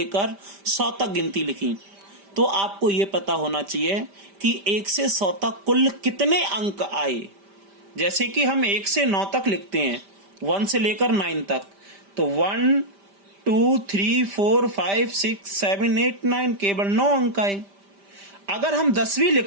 100 तक गिनती लिखी, तो आपको यह पता होना चाहिए कि 1 से 100 तक कुल कितने अंक आए। जैसे कि हम 1 से 9 तक लिखते हैं, 1 से लेकर 9 तक, तो 1 2 3 4 5 6 7 8 9 केवल 9 अंक आए। अगर हम 10वीं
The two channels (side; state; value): left; late; 5.1 ms